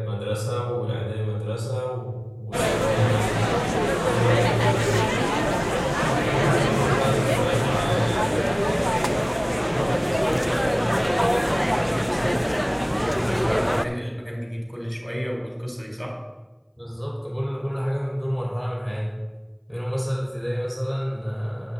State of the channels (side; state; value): both; identical; correlation 1.00